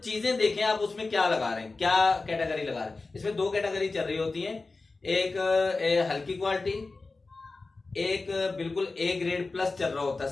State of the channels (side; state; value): right; quieter; 3.7 dB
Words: देखें आप उसमें क्या लगा रहे हैं, क्या कैटेगरी लगा रहे हैं। इसमें 2 कैटेगरी चल रही होती है, एक हल्की क्वालिटी, एक बिल्कुल ए ग्रेड प्लस चल रहा होता है